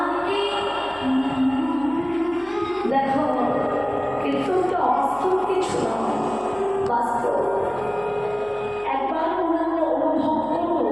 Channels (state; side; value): noise; left; hum, 24 dB below the sound